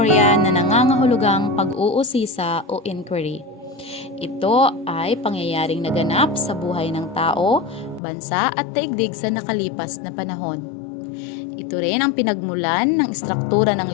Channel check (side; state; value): right; drops out; at 8.0 s